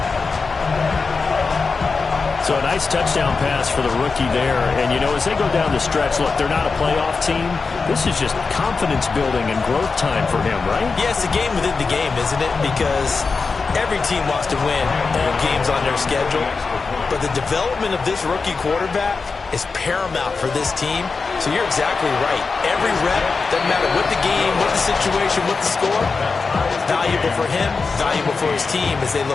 So a nice touchdown pass for the rookie there. And, you know, as they go down the stretch, look, they're not a playoff team. This is just confidence building and growth time for him, right? Yeah, it's a game within the game, isn't it? Because every team wants to win all games on their schedule. But the development of this rookie quarterback is paramount for this team. So you're exactly right. Every rep, doesn't matter what the game, what the situation, what the score, valuable for him, valuable for his team as they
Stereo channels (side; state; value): right; quieter; 4.5 dB